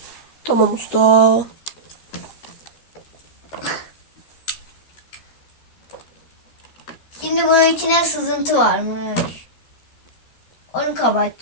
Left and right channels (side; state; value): right; late; 13 ms